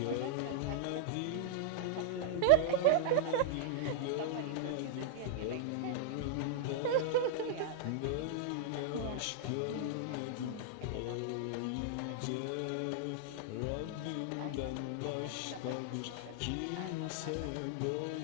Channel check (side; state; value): both; different; correlation -0.01